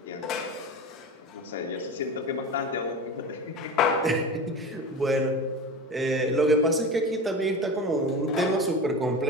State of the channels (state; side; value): normal; both; correlation 0.29